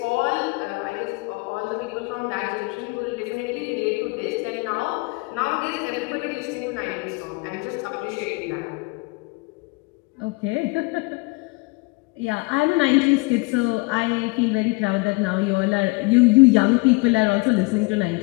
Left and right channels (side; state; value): right; quieter; 26.5 dB